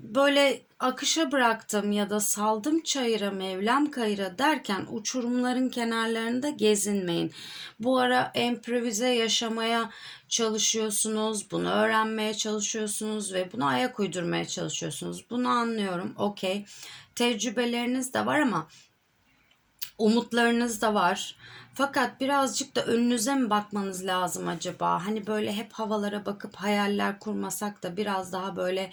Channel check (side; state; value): both; identical; correlation 1.00